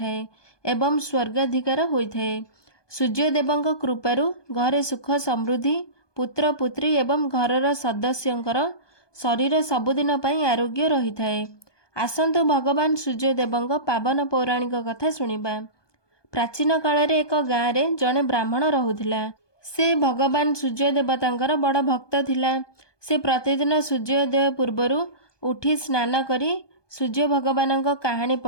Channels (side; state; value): right; late; 1.2 ms